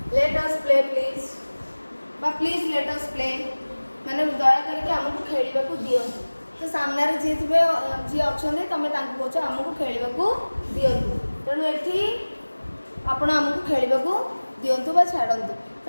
बा प्लीज लेट अस प्ले माने दया करके हमको खेलिबा को दियंतु तो सामने रे जे थिबे जे अछने तमे तांको कहछ हमको खेलिबा को दियंतु तेणु एठी आपण हमको खेलिबा को दियंतु बा छाडंतु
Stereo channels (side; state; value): both; inverted; correlation -1.00